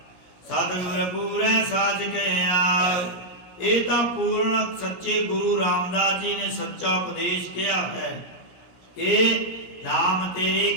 ਸਤਿਗੁਰ ਪੂਰੈ ਸਾਚ ਕਹਿਆ, ਇਹ ਤਾਂ ਪੂਰਨ ਸੱਚੇ ਗੁਰੂ ਰਾਮਦਾਸ ਜੀ ਨੇ ਸੱਚਾ ਉਪਦੇਸ਼ ਕਿਹਾ ਹੈ ਕਿ ਨਾਮ ਤੇਰੇ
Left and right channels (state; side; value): late; right; 17 ms